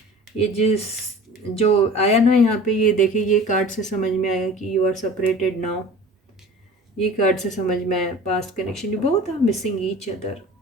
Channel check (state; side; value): normal; both; correlation 0.41